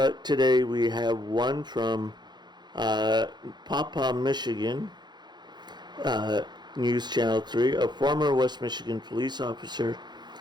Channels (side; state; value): left; late; 0.21 ms